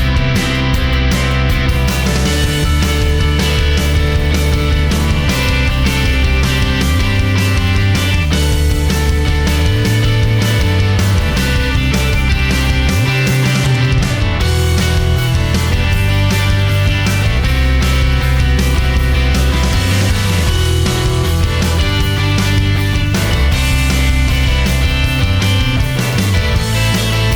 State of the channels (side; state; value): both; identical; correlation 1.00